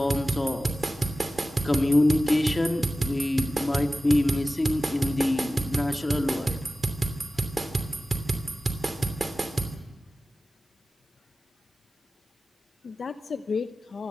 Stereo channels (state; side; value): normal; both; correlation 0.95